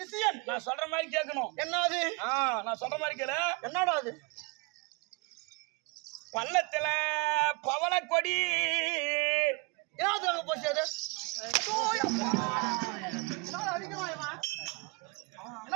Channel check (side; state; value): left; quieter; 27.3 dB